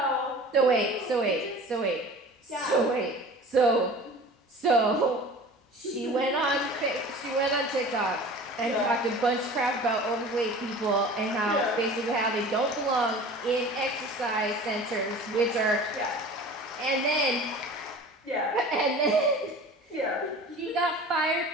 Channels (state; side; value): normal; both; correlation 0.40